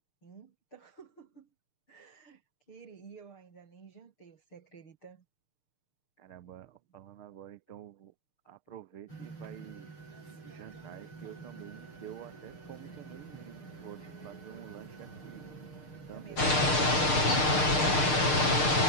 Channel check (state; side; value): late; right; 6.6 ms